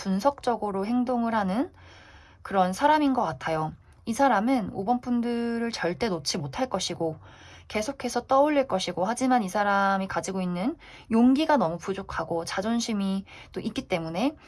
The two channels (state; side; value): identical; both; correlation 1.00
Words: 행동을 하는 그런 사람인 것 같아요. 이 사람은 5번 분들을 절대 놓지 못할 것이고 계속해서 떠올릴 것이고, 하지만 이 사람이 가지고 있는 용기가 너무 부족하고 자존심이 또 있기 때문에